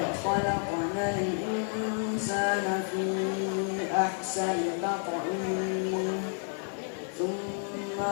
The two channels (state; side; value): silent; right; 57 dB below the other